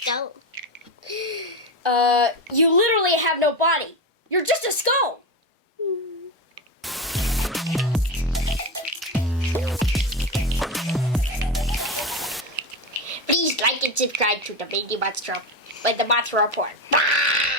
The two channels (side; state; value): both; normal; correlation 0.18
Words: You literally have no body. You're just a skull. Please like and subscribe to the Monster Report.